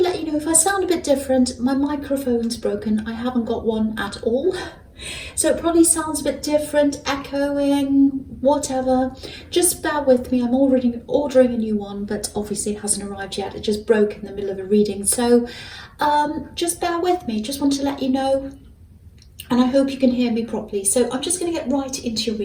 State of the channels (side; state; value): both; identical; correlation 1.00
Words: let you know if I sound a bit different, my microphone's broken. I haven't got one at all. So it probably sounds a bit different, echoing, whatever. Just bear with me. I'm already ordering a new one, but obviously it hasn't arrived yet. It just broke in the middle of a reading. So just bear with me. Just want to let you know. And I hope you can hear me properly. So I'm just going to get right into your